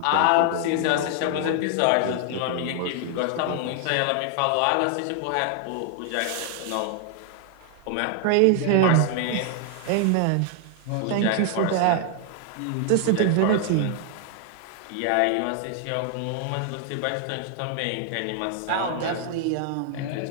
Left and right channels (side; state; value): both; different; correlation 0.00